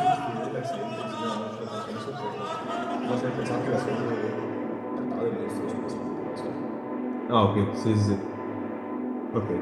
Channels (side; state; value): both; identical; correlation 1.00